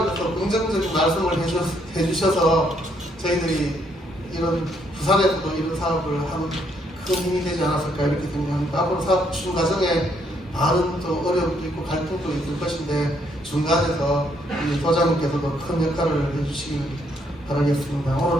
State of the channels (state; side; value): normal; both; correlation 0.71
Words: 대해서 긍정적인 말씀을 해주셔서 저희들이 이런 부산에서도 이런 사업을 하는 큰 힘이 되지 않았을까 이렇게 생각합니다. 앞으로 사업 추진 과정에 많은 또 어려움도 있고 갈등도 있을 것인데 중간에서 우리 소장님께서도 큰 역할을 해주시길 바라겠습니다.